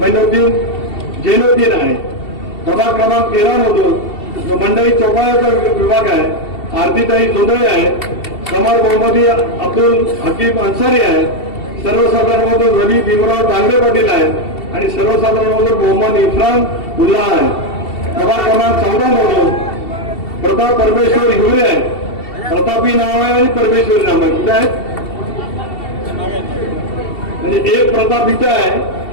मैनुद्दीन जैनुद्दीन आहे. प्रभाग क्रमांक 13 मधून जो मंडळी चौपाळ्याचा विभाग आहे, आरतीताई जोंधळे आहे, समर मोहम्मदी अब्दुल हकीम अन्सारी आहे. सर्वसाधारण मधून रवी भीमराव दांगडे पाटील आहेत आणि सर्वसाधारण मधून मोहम्मद इफ्रान उल्ला आहे. प्रभाग क्रमांक 14 मधून प्रताप परमेश्वर हिवरे आहे. प्रतापी नाव आहे आणि परमेश्वरी नाव आहे. कुठे आहे? म्हणजे एक प्रताप इथं आहे,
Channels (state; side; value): late; right; 2.7 ms